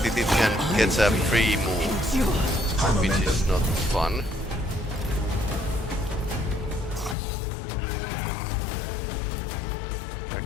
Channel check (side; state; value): right; drops out; at 7.2 s